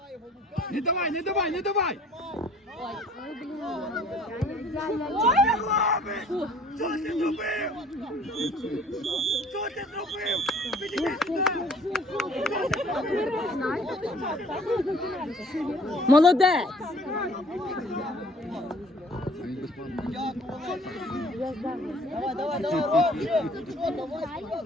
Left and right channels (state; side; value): normal; both; correlation 0.54